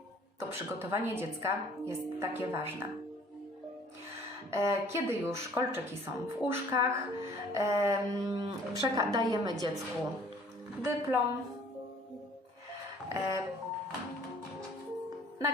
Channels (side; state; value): both; normal; correlation 0.54